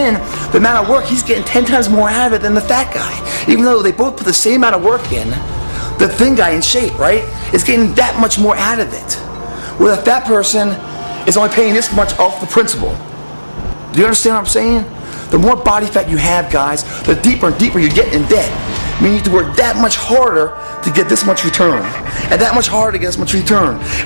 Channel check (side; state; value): both; inverted; correlation -1.00